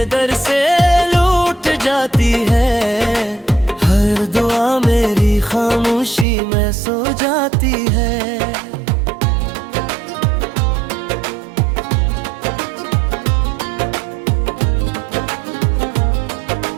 दर से लूट जाती है, हर दुआ मेरी खामोशी में सो जाती है।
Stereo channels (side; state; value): left; drops out; at 6.2 s